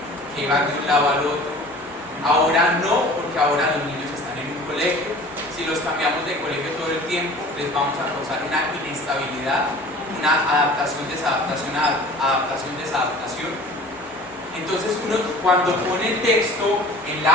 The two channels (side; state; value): both; normal; correlation 0.44